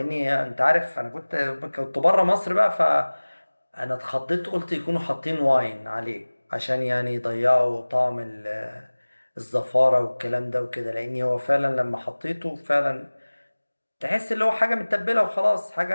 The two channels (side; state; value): both; inverted; correlation -1.00